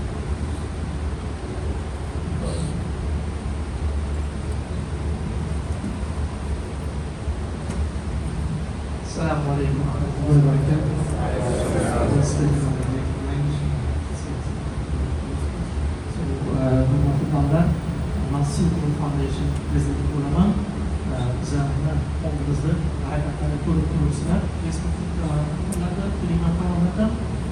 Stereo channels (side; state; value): both; identical; correlation 1.00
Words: Assalamu عليكم ورحمة الله وبركاته. Hükümetimden Nasıl Foundation President olaman üzerinde olduğunuzda hakikaten kuruluşlar Facebook'larda Telegram kanalında